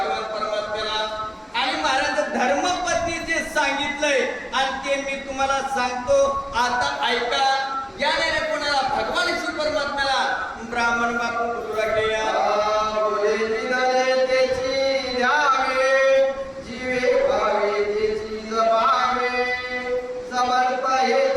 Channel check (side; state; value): both; identical; correlation 1.00